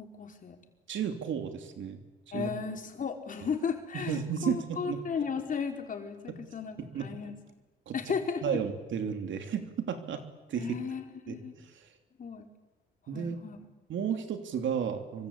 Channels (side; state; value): both; normal; correlation 0.41